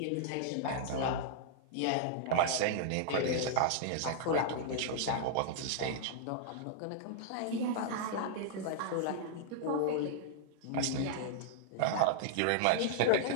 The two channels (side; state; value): both; different; correlation -0.01